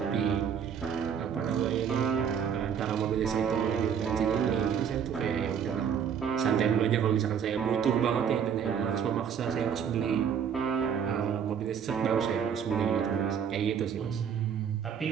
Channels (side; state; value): left; quieter; 7.7 dB